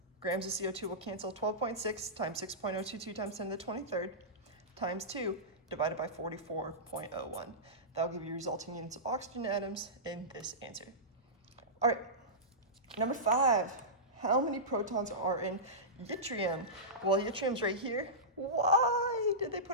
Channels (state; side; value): normal; both; correlation -0.17